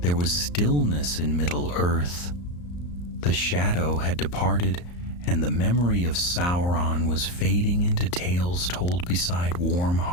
there was stillness in Middle-earth. The shadow had departed, and the memory of Sauron was fading into tales told beside warm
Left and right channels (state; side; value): late; right; 34 ms